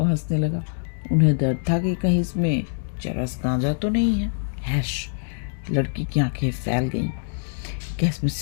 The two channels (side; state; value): right; silent; digital silence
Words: हंसने लगा। उन्हें डर था कि कहीं इसमें चरस गांजा तो नहीं है। हैश! लड़की की आंखें फैल गईं। क्या इसमें